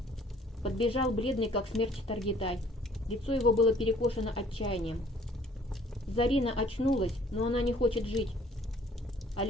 Подбежал бледный, как смерть, Таргитай. Лицо его было перекошено отчаянием. Зарина очнулась, но она не хочет жить.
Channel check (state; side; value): normal; both; correlation 0.57